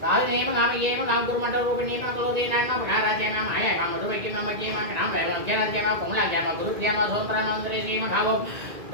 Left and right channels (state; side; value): late; left; 2.0 ms